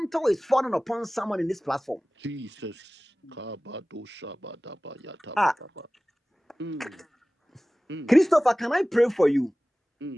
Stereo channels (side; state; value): both; normal; correlation 0.97